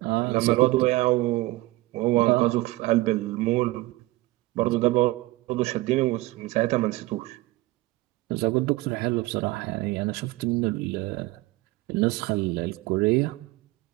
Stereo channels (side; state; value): left; quieter; 19.6 dB